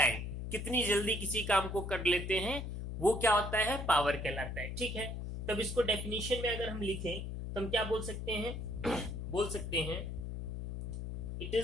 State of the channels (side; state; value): left; noise; hum, 5 dB below the sound